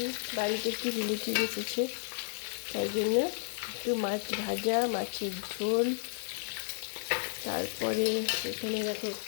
বাড়িতে একটু রিলেটিভ এসেছে, তাই জন্য একটু মাছ ভাজা, মাছের ঝোল। তারপরে এখানে দেখো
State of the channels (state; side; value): silent; right; digital silence